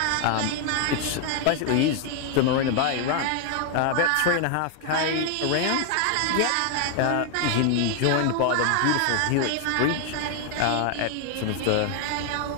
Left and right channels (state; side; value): different; both; correlation 0.00